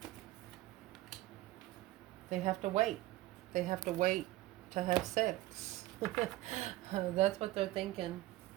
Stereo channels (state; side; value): quieter; left; 16.9 dB